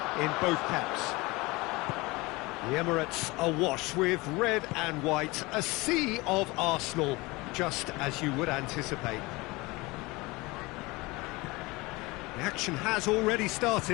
in both camps. The Emirates awash with red and white, a sea of Arsenal, just as you would anticipate. The action has already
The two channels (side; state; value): right; quieter; 23.1 dB